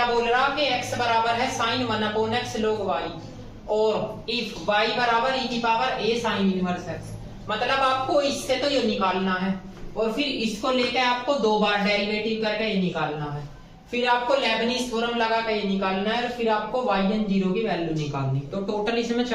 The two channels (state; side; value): identical; both; correlation 1.00